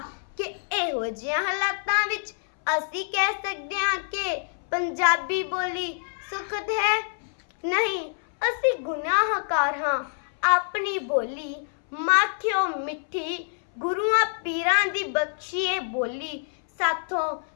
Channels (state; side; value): silent; right; 61 dB below the other